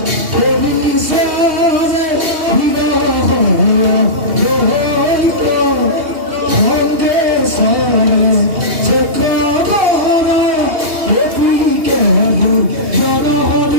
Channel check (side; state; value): left; late; 2.8 ms